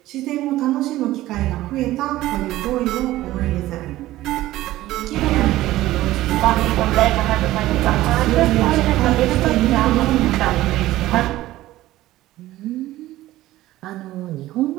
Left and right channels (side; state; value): left; quieter; 15.9 dB